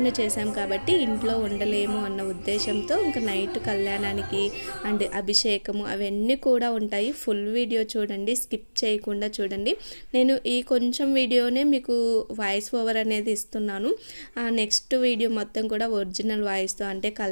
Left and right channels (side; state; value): both; inverted; correlation -1.00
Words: చేసాం కాబట్టి ఇంట్లో ఉండలేము అన్న ఉద్దేశంతో ఇంకా నైట్ కళ్యాణానికి అండ్ అభిషేకము అవన్నీ కూడా ఉంటాయి. ఫుల్ వీడియో చూడండి, స్కిప్ చేయకుండా చూడండి. నేను ఈ కొంచెం వీడియోనే మీకు వాయిస్ ఓవర్ అనేది ఇస్తున్నాను. నెక్స్ట్ వీడియో మొత్తం కూడా ఒరిజినల్ వాయిస్తో అంటే